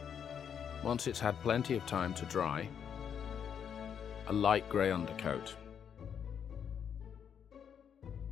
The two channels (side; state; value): right; quieter; 8.0 dB